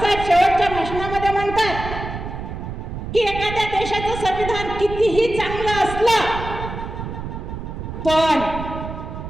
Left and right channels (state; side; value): noise; right; rumble, 7 dB below the sound